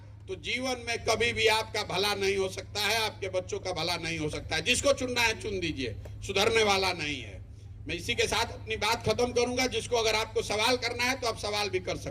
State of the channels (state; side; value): identical; both; correlation 1.00